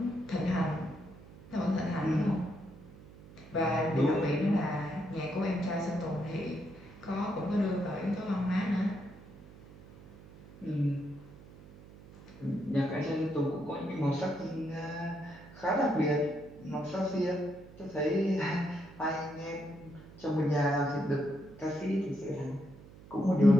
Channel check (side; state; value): right; noise; hum, 19 dB below the sound